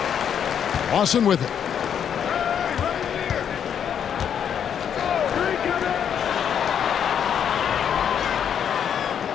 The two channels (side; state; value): right; quieter; 8.5 dB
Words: Lawson with it.